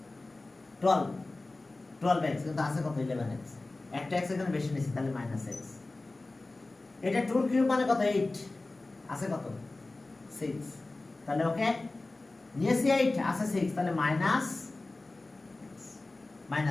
12x, কিন্তু আছে কত? 11x, একটা x এখানে বেশি নিয়েছি, তাহলে মাইনাস x। এটা 2 কিউব মানে কত? 8, আছে কত? 6, তাহলে ওকে নিয়েছি 8, আছে 6, তাহলে মাইনাস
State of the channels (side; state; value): right; quieter; 3.1 dB